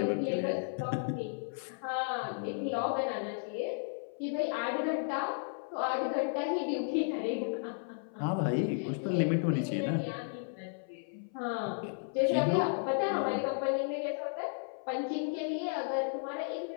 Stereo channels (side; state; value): right; silent; 55 dB below the other